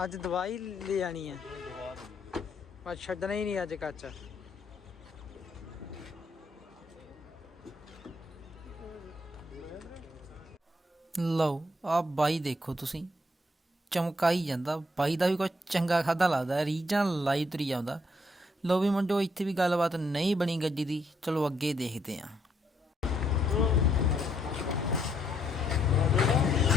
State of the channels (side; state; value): both; normal; correlation 0.72